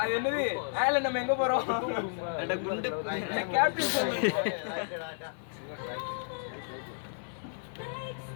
அது என்னது? ஆல நம்ம எங்க போறோம்? அட குண்டு கேப்டன் சொல்லுங்க.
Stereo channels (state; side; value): silent; right; digital silence